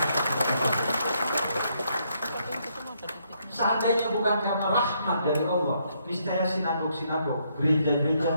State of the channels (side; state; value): both; inverted; correlation -0.74